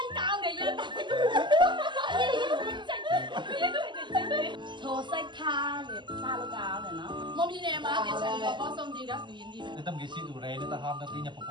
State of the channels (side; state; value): left; late; 0.22 ms